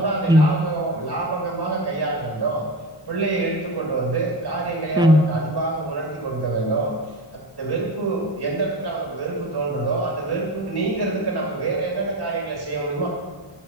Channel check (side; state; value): both; normal; correlation 0.24